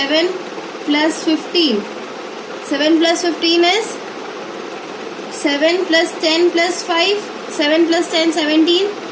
plus 15. 7 plus 15 is 7 plus 10 plus 5. 7 plus 10, 17.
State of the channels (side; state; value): both; identical; correlation 1.00